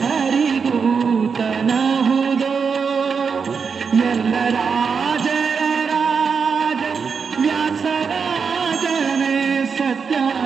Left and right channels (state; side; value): quieter; left; 5.8 dB